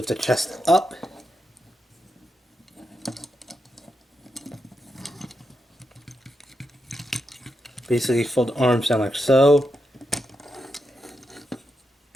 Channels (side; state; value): both; normal; correlation 0.85